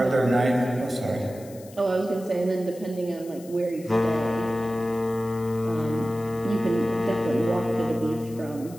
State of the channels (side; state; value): left; noise; hiss, 21 dB below the sound